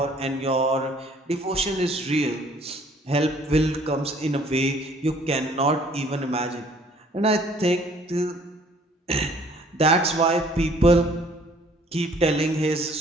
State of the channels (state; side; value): normal; both; correlation 0.58